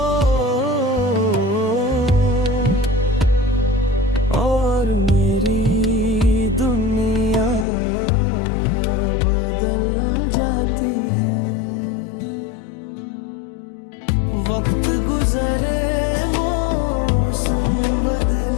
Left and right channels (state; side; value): drops out; right; at 7.7 s